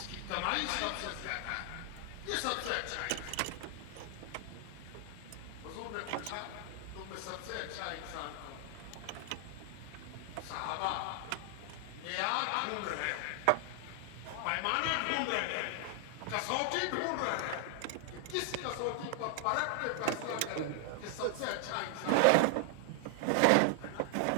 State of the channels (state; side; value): different; both; correlation 0.00